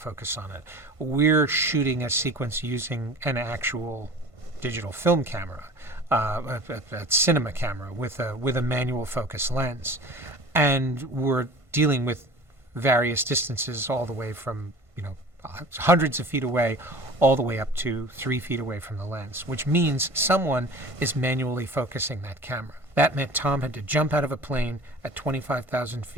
on it. We're shooting a sequence using an actual digital film camera, a cinema camera with a manual focus lens, and we're dealing with various distances all the way from hundreds of feet away, all the way up to 3 feet away from the lens, which means someone is manually focusing that camera. That meant Tom had to jump out of a plane at 25,000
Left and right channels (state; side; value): late; left; 1.5 ms